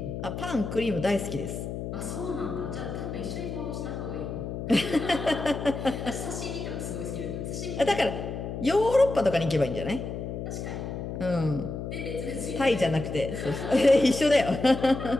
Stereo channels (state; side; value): noise; left; hum, 6 dB below the sound